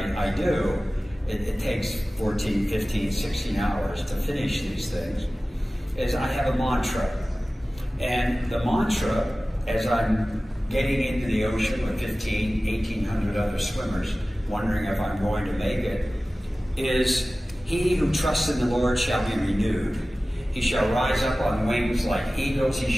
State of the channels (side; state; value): both; normal; correlation 0.97